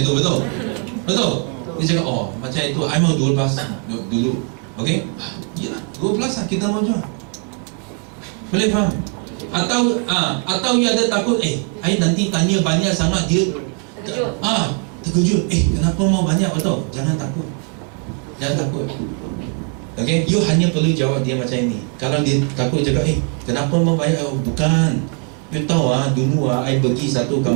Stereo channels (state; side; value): quieter; left; 36.6 dB